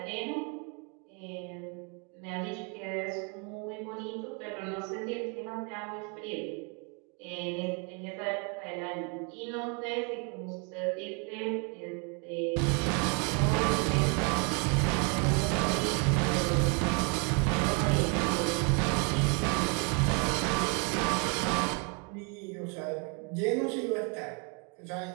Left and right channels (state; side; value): quieter; left; 35.4 dB